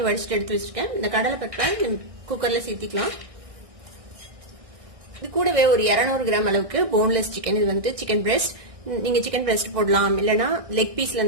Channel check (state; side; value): late; left; 1.6 ms